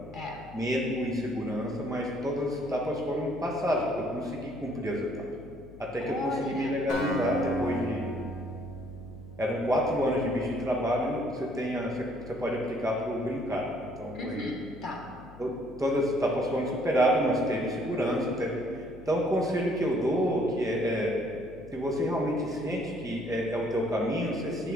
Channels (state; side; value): noise; left; hum, 18 dB below the sound